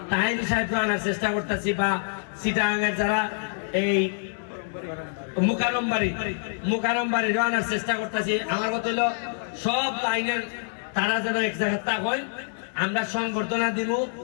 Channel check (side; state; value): right; silent; digital silence